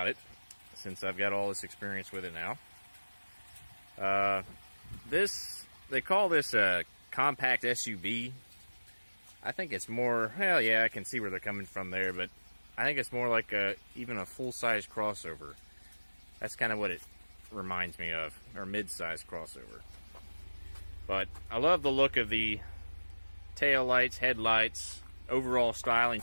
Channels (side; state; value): both; inverted; correlation -1.00